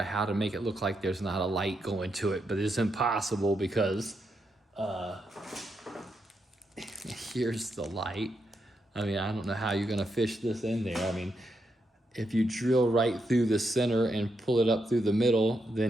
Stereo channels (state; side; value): normal; both; correlation 0.82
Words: how to make it look like there's not a light going to it, but it's impossible because here's the light. I mean, I don't know how you're gonna fish this in there. I mean, if you drill right through the center and pull it up through the middle,